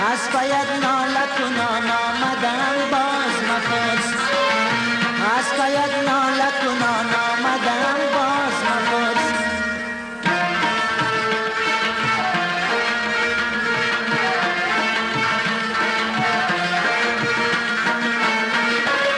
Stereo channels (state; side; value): identical; both; correlation 1.00